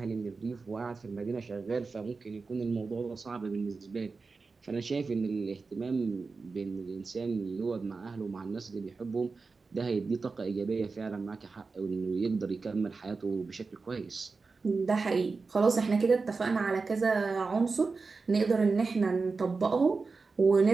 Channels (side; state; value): left; quieter; 4.3 dB